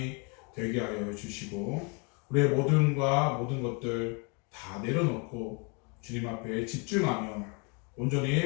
되게 하여 주시고 우리의 모든 것들 다 내려놓고 주님 앞에 집중하며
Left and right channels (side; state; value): right; quieter; 33.9 dB